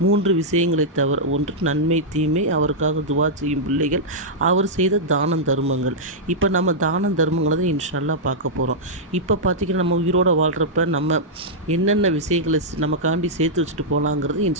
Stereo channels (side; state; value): both; normal; correlation -0.09